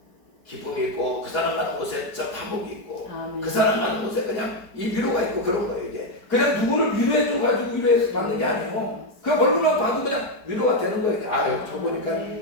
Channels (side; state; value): right; late; 4.9 ms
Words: 기쁨이 있고 그 사람 가는 곳에 화목이 있고 그 사람 가는 곳에 그냥 이 위로가 있고 그런 거예요. 이게 그냥 누구를 위로해 줘가지고 위로해서 받는 게 아니에요. 그 얼굴만 봐도 그냥 위로가 되는 거예요. 저